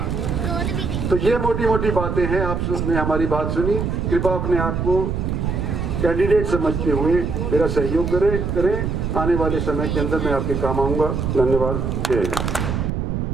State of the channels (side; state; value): right; noise; rumble, 1 dB below the sound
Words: तो ये मोटी मोटी बातें हैं, आपने हमारी बात सुनी। कृपया अपने आप को कैंडिडेट समझते हुए मेरा सहयोग करें। आने वाले समय के अंदर मैं आपके काम आऊँगा। धन्यवाद। जय हिंद।